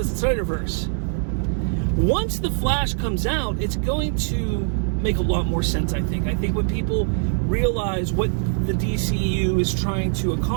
as the Snyderverse? Once The Flash comes out, it's going to make a lot more sense, I think. I think when people realize what the DCEU is trying to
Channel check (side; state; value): left; silent; 64 dB below the other